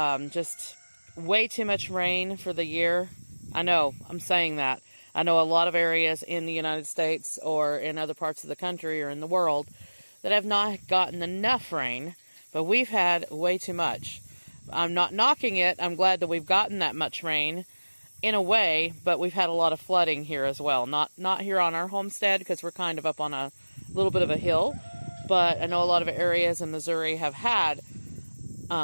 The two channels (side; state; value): both; inverted; correlation -1.00